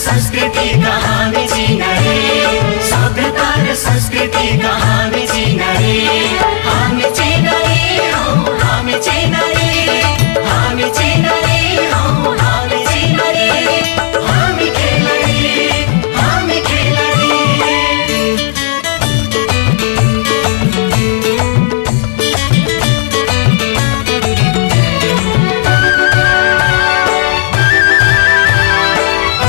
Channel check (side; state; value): right; silent; digital silence